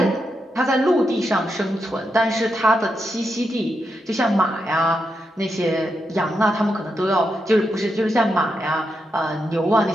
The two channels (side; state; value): both; normal; correlation 0.84